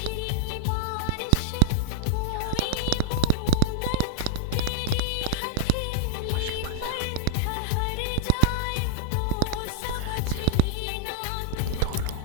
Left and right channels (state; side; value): different; both; correlation -0.01